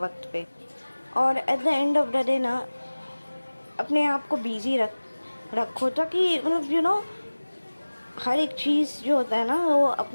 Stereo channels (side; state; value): both; inverted; correlation -1.00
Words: पे। और at the end of the day ना अपने आप को बिजी रखो, ताकि मतलब हर एक चीज़ जो होता है ना, वो